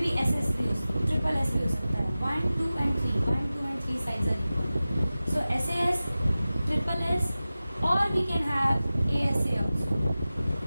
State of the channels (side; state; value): both; inverted; correlation -0.96